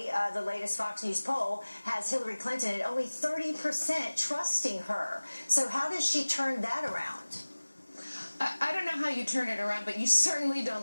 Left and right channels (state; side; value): inverted; both; correlation -1.00